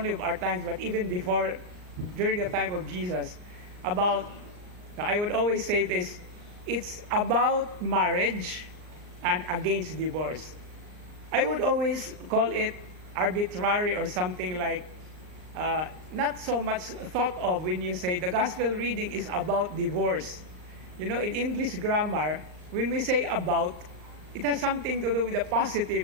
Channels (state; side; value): late; left; 39 ms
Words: of our times, but even before, during the time of Jesus, about, I would always say this, it's about marriage and against divorce. I would always call it arbitrary or something like not so much thought of when you say the gospel reading is about divorce. You know, in English grammar, when we say about, it has something to do with a positive